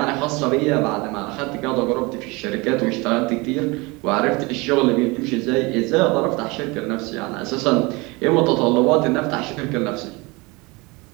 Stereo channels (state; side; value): quieter; left; 25.2 dB